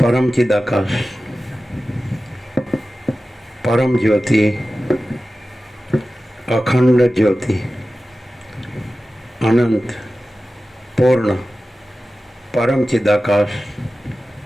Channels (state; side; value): normal; both; correlation 0.95